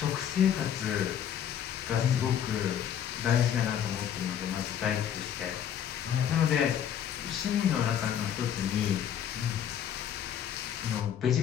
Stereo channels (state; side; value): quieter; right; 9.4 dB